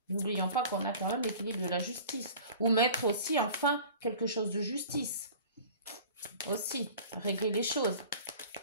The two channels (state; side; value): inverted; both; correlation -0.43